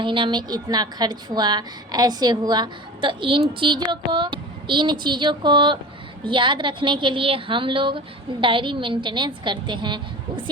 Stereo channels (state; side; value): normal; both; correlation 0.34